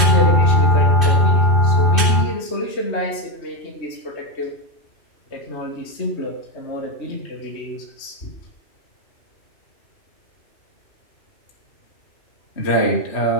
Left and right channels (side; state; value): right; late; 2.6 ms